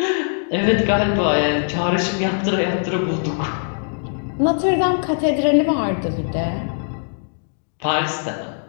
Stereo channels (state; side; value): silent; right; digital silence